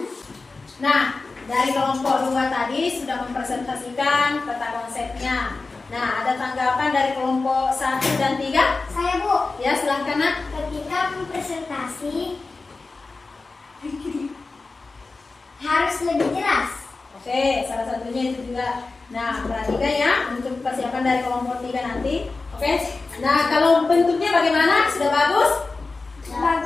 Nah, dari kelompok 2 tadi sudah mempresentasikan peta konsepnya. Nah, ada tanggapan dari kelompok 1 dan 3? Saya, Bu. Ya, silahkan nak. Ketika presentasi harus lebih jelas. bukunya itu juga. Nah, perhatikan ya untuk persiapan dari kelompok 3 nanti. Oke. Nah, kalau bentuknya bagaimana? Sudah bagus?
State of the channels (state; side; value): quieter; right; 3.8 dB